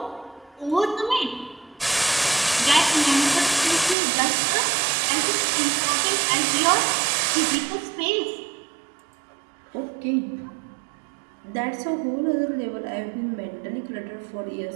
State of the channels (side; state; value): left; drops out; at 4.0 s